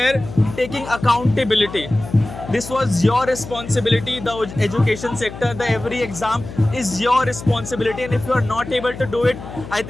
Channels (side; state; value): left; noise; hum, 12 dB below the sound